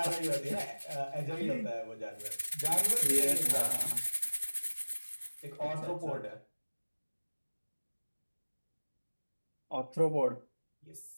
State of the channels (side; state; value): both; inverted; correlation -1.00